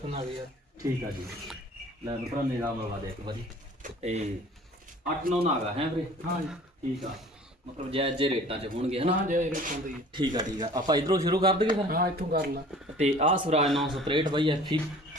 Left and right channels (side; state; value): both; normal; correlation 0.47